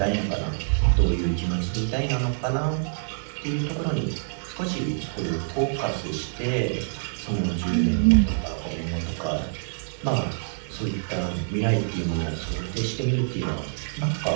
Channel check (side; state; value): left; silent; digital silence